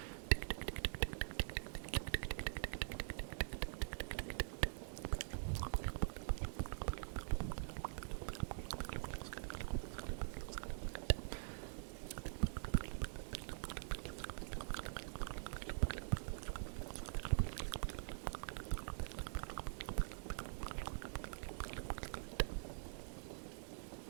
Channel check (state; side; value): silent; left; digital silence